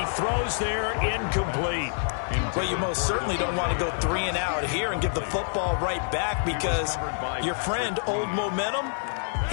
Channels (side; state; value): right; silent; digital silence